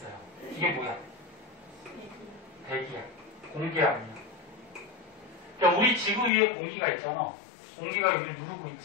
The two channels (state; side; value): drops out; right; at 6.3 s